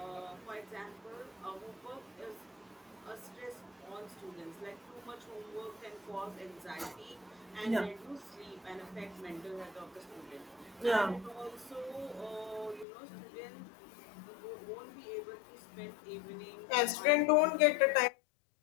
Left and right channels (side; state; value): right; drops out; at 12.9 s